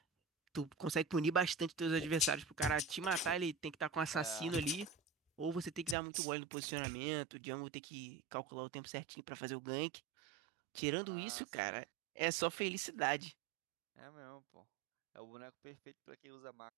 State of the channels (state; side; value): drops out; left; at 6.0 s